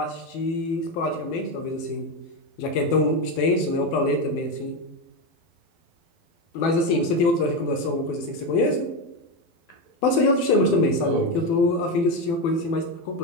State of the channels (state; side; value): late; right; 12 ms